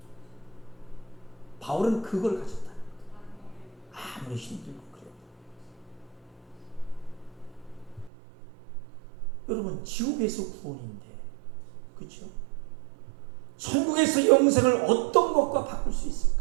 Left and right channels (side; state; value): left; drops out; at 8.1 s